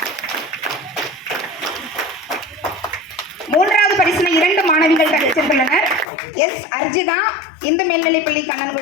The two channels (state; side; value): drops out; right; at 6.1 s